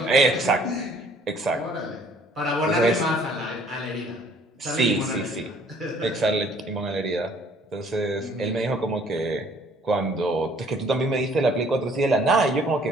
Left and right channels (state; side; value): normal; both; correlation 0.58